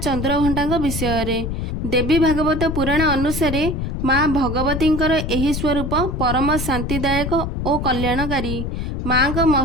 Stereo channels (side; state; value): left; noise; rumble, 3 dB below the sound